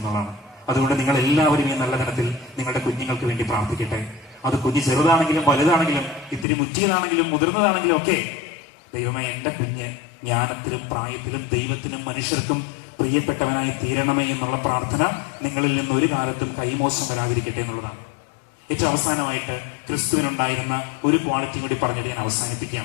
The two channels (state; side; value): drops out; right; at 6.5 s